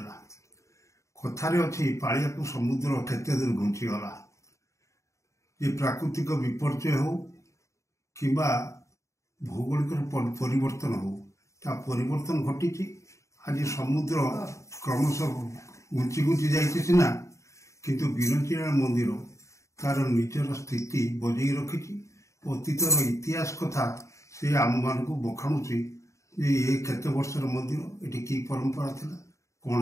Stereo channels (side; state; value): right; late; 0.14 ms